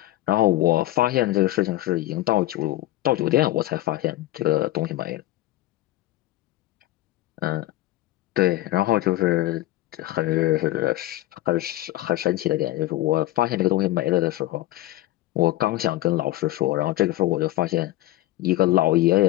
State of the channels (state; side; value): quieter; right; 16.0 dB